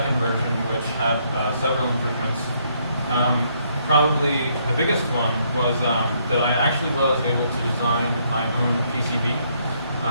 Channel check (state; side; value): inverted; both; correlation -0.71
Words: version which had several improvements. Probably the biggest one was that I actually was able to design my own PCB